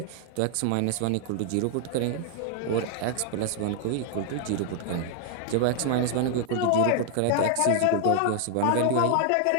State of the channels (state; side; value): different; both; correlation 0.00